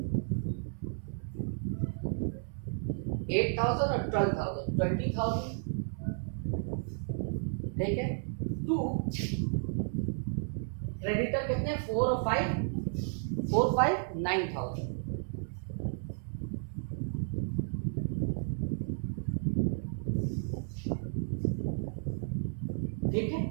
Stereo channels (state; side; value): silent; left; 56 dB below the other